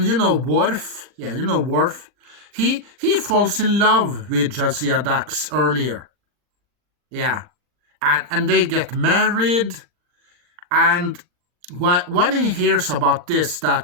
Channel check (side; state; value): left; late; 39 ms